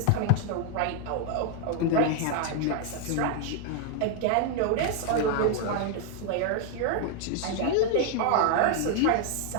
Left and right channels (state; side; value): different; both; correlation 0.00